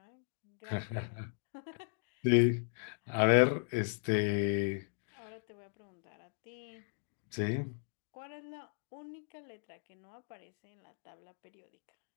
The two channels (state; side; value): silent; right; digital silence